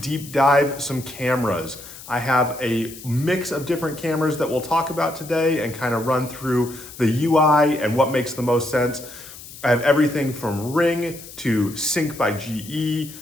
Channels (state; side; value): noise; left; hiss, 16 dB below the sound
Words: dive some cameras. I have a mix of different cameras that we'll talk about today and kind of run through the UI and what makes the most sense. I have everything from Ring to Sync by GE